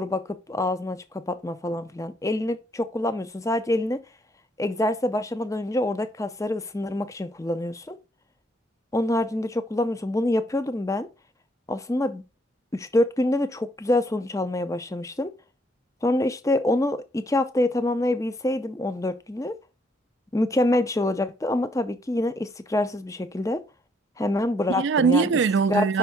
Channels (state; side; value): normal; both; correlation 0.69